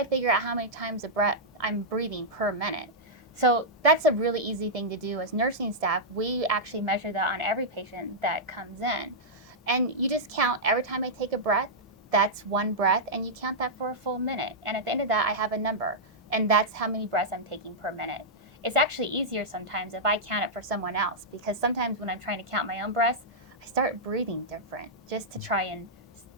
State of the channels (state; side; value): normal; both; correlation -0.10